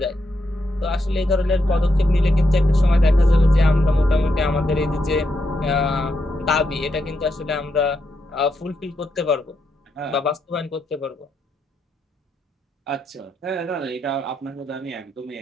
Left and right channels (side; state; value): both; normal; correlation 0.82